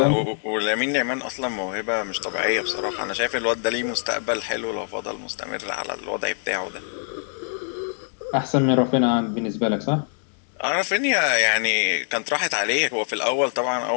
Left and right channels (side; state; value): right; silent; digital silence